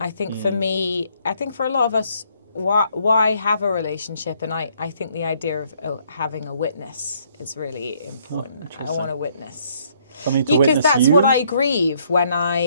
think for me, I think for a lot of us, why have a relationship? And I think the idea of having a witness is really important. I want a witness. Because that's what I grieve when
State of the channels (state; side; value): inverted; both; correlation -0.67